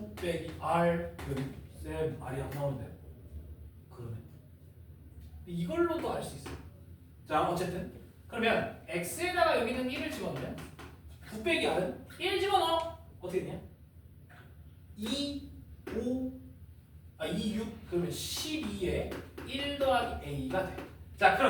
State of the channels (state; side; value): identical; both; correlation 1.00